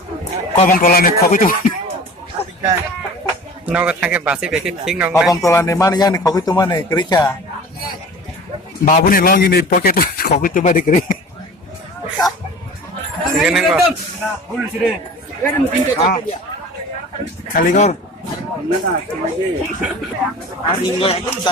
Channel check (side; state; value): both; normal; correlation 0.40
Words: Kau bang tolan ni kau itu. No ko thake basi beki king no. Kau bang tolan ni mana yang kau itu mana kerja. Babu ni long ini pocket kau itu mana kerja. Gini ko. Kali kau.